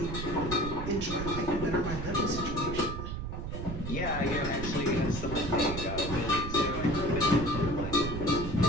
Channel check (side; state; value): right; noise; rumble, 6 dB below the sound